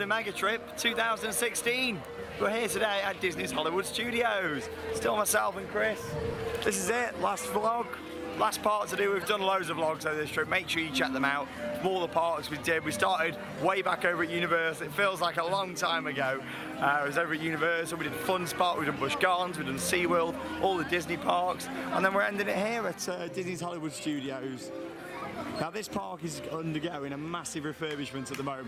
Mega Trip 2016. We're here today at Disney's Hollywood Studios. Still myself and Chris. This is it, last vlog. Last part to do. We've done loads of vlogs over this trip. Make sure you check them out. From all the parks we did. We started way back over at Universal. It feels like a long time ago. I was over at Universal. We did Fun Spot, we did Busch Gardens, we did SeaWorld, all the Disney parks. And then we're ending it here at Disney's Hollywood Studios. Now this park is undergoing a massive refurbishment at the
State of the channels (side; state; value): both; identical; correlation 1.00